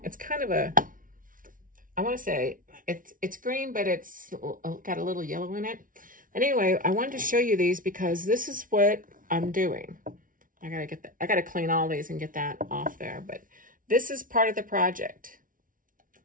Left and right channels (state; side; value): late; left; 0.39 ms